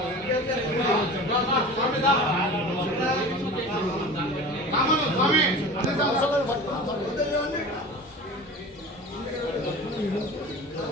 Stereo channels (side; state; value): both; normal; correlation 0.36